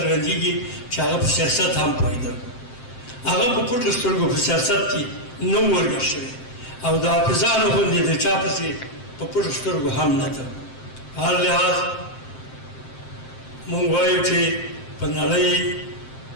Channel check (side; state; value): right; late; 7.7 ms